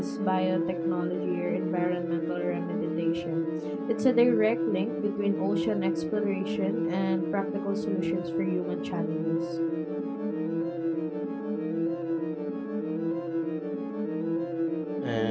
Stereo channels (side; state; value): both; identical; correlation 1.00